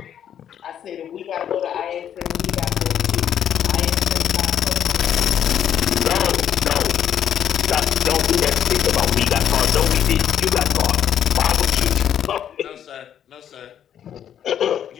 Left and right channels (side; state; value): right; quieter; 9.7 dB